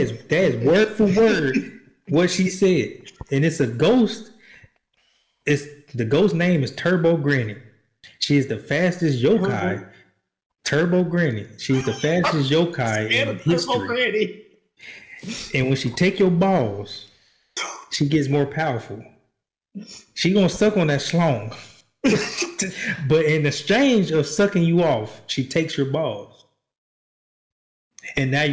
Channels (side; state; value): both; identical; correlation 1.00